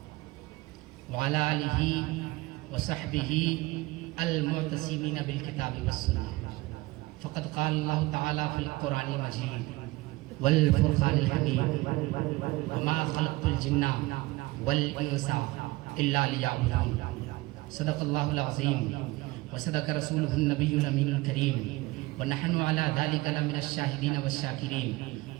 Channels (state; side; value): quieter; left; 20.8 dB